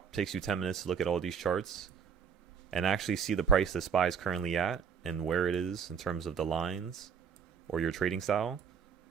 it takes you 10 minutes to look at all these charts and actually see the price the SPY is currently at and where it is in terms of the lines or your trading style.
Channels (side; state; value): left; quieter; 6.9 dB